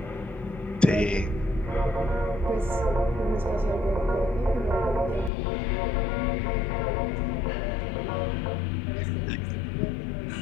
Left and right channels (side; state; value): right; drops out; at 5.3 s